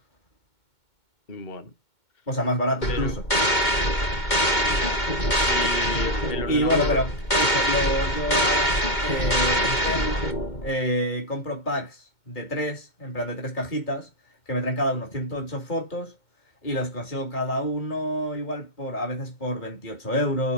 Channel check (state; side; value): late; right; 2.2 ms